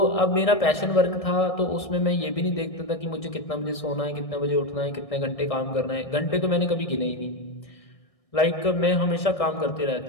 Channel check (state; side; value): late; right; 1.6 ms